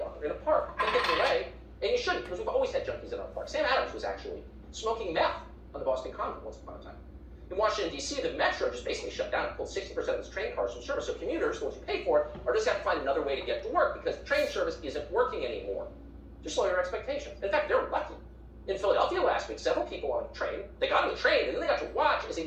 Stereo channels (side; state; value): both; identical; correlation 1.00